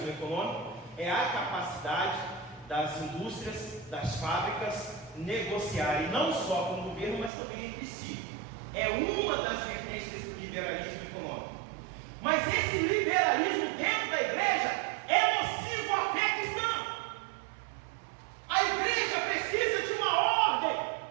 econômico? É a capacidade das indústrias, das fábricas negociarem não só com o governo, mas também entre si. É uma das vertentes desse liberalismo econômico. Mas esse liberalismo dentro da igreja é nocivo à fé cristã. A igreja precisa de uma ordem.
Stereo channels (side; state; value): left; drops out; at 7.3 s